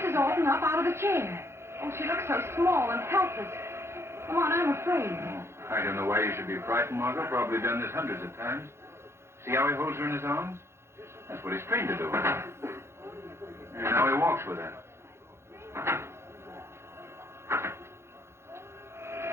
Alton up out of the chair. Oh, she looks so small and helpless. Come on, I'm afraid. I don't know why you should be frightened, Margot. Probably done this hundreds of times. See how he holds her in his arms? That's what he's trained to do. And now he walks with her.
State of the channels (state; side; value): late; left; 0.12 ms